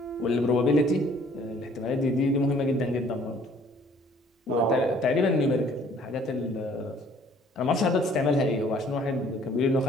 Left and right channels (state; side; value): normal; both; correlation 0.57